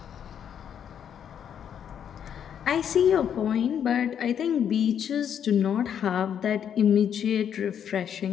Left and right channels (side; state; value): right; quieter; 8.7 dB